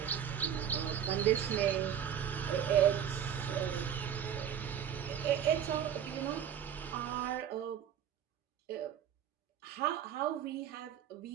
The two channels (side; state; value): left; quieter; 9.2 dB